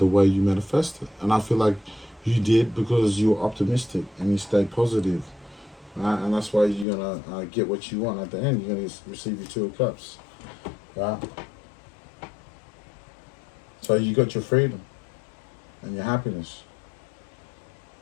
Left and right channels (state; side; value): drops out; right; at 6.9 s